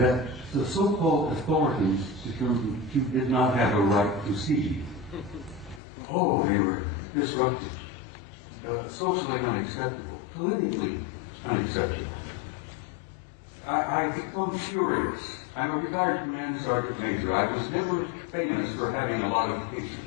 the so-called authorities did not have a right to see. Oh, they were disruptive, socially unacceptable, politically unacceptable. I become furious. I'm a retired command sergeant major. I was never famous for having a lot of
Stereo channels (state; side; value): drops out; right; at 5.8 s